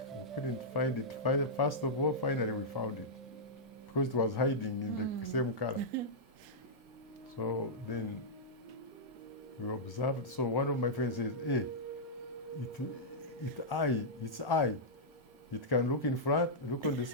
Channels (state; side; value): normal; both; correlation -0.11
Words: We couldn't find it. First of all, finally we found it because it was hiding in the same color. So then we observed. So one of my friends says, "Hey, it's eye. It can look in front, look on the